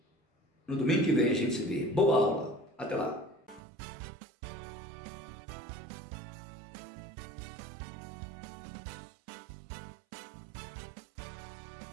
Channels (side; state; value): left; drops out; at 3.6 s